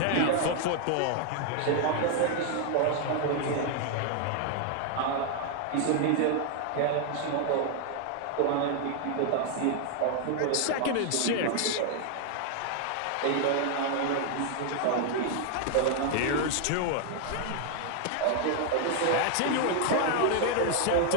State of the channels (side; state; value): both; different; correlation 0.00